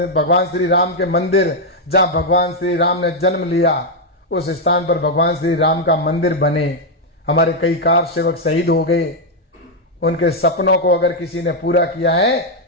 भगवान श्री राम के मंदिर, जहां भगवान श्री राम ने जन्म लिया, उस स्थान पर भगवान श्री राम का मंदिर बने। हमारे कई कार सेवक शहीद हो गए। उनके सपनों को अगर किसी ने पूरा किया है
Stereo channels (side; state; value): both; normal; correlation 0.00